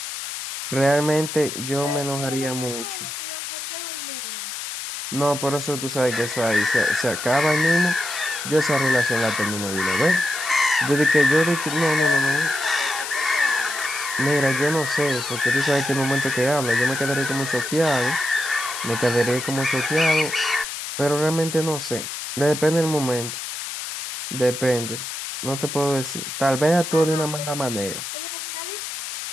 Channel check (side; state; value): left; noise; hiss, 7 dB below the sound